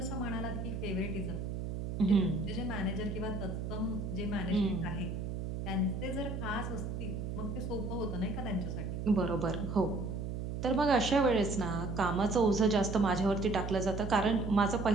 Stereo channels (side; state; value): right; noise; hum, 4 dB below the sound